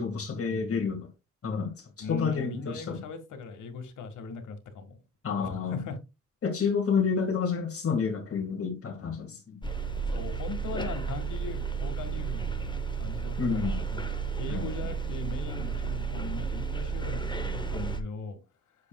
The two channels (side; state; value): both; normal; correlation 0.44